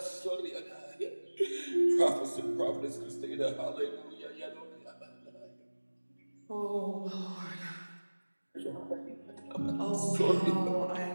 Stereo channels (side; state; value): both; inverted; correlation -1.00